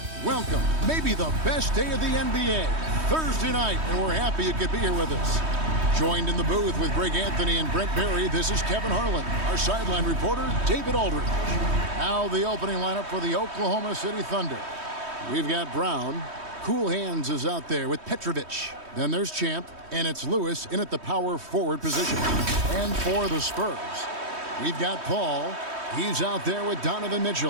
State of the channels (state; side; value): late; left; 3.2 ms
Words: Welcome, maybe the best day of the NBA, Thursday night, and we're happy you could be here with us. Joined in the booth with Greg Anthony and Brent Barry, this is Kevin Harlan. Our sideline reporter, David Aldridge. Now the opening lineup for the Oklahoma City Thunder. We've got Brown. Cool Hands is out there with Petrovic. Then there's Champ, and it's Lewis in at the power forward position. And for the Spurs, we've got Paul. He's out there with Donovan